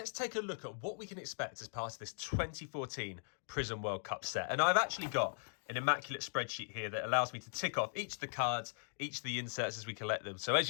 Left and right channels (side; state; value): right; silent; 52 dB below the other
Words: take a look at what we can expect as part of this 2014 Prizm World Cup set. And I've actually got an immaculate spreadsheet here that allows me to tick off each of the cards, each of the inserts as we collect them. So as